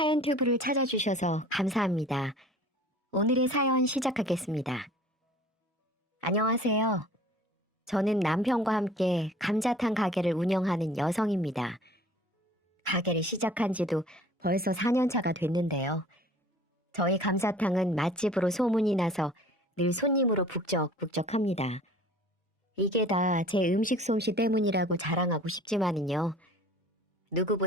튜브를 찾아주셔서 감사합니다. 오늘의 사연 시작하겠습니다. 안녕하세요. 저는 남편과 함께 감자탕 가게를 운영하는 여성입니다. 가게를 시작한 지도 벌써 4년 차가 됐는데요. 저희 감자탕은 맛집으로 소문이 나서 늘 손님으로 북적북적합니다. 이게 다 제 음식 솜씨 때문이라고 자랑하고 싶지만은요.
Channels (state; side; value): normal; both; correlation 0.48